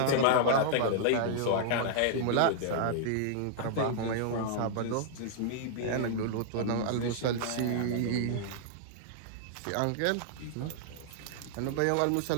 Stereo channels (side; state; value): both; different; correlation -0.01